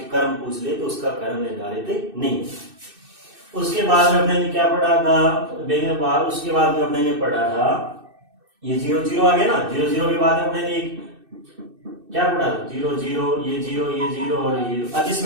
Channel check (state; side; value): late; left; 2.6 ms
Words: क्रम पूछ ले तो उसका क्रम निर्धारित नहीं। उसके बाद में अपने ने क्या पढ़ा था, उसके बाद में अपने ने पढ़ा था ये 0 0 आ गया ना, 0 0 के बाद अपने ने क्या पढ़ा था, 0 0 ये 0 ये 0 और ये 0 अदिश